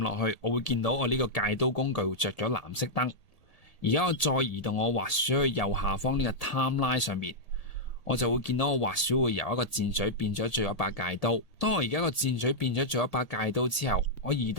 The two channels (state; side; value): late; right; 1.8 ms